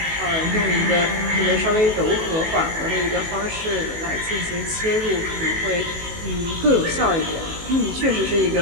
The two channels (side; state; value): left; late; 19 ms